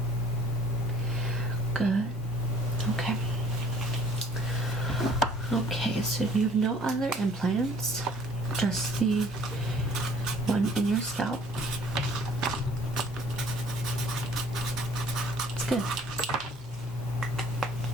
Good. Okay. Okay, so you have no other implants, just the one in your scalp. It's good.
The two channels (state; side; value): normal; both; correlation 0.55